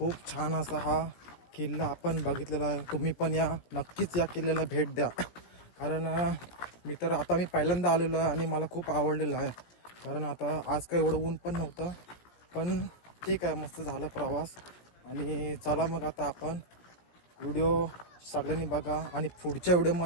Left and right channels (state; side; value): late; right; 17 ms